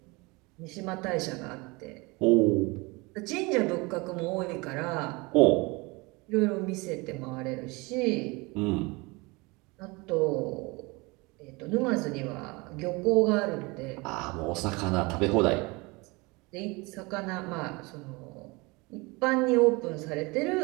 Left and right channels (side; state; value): left; quieter; 25.6 dB